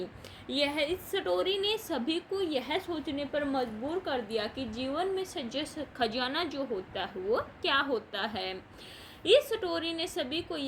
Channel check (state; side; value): identical; both; correlation 1.00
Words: इस स्टोरी ने सभी को यह सोचने पर मजबूर कर दिया कि जीवन में सच्चा खजाना जो होता है वो क्या होता है। इस स्टोरी ने सभी को